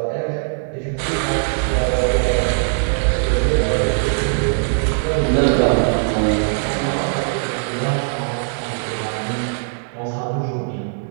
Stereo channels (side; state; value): left; silent; 66 dB below the other